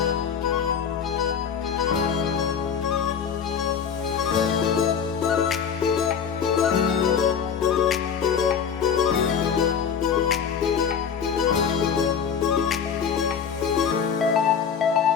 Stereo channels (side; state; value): right; quieter; 7.2 dB